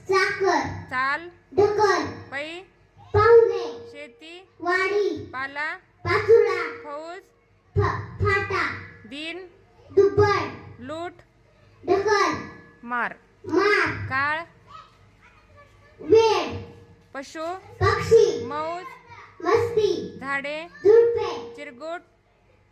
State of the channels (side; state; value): both; identical; correlation 1.00